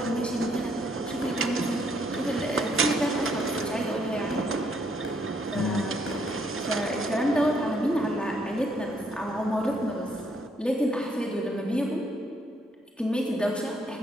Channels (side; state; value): both; normal; correlation 0.71